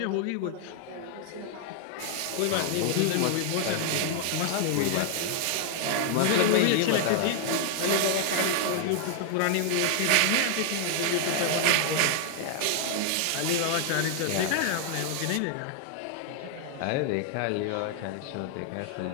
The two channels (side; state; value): both; different; correlation 0.00